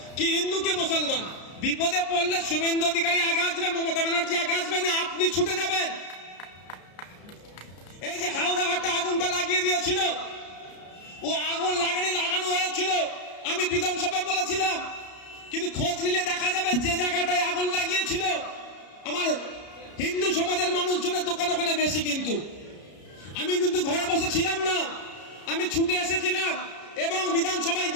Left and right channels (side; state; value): right; late; 33 ms